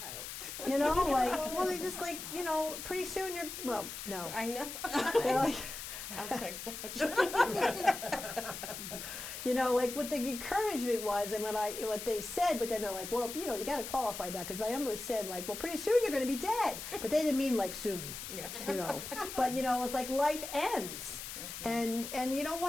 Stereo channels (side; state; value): left; noise; hiss, 8 dB below the sound